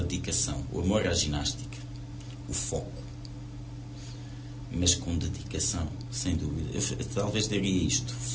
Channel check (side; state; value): both; identical; correlation 1.00